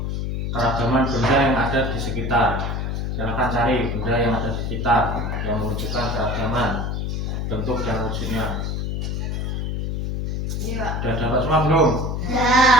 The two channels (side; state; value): left; noise; hum, 2 dB below the sound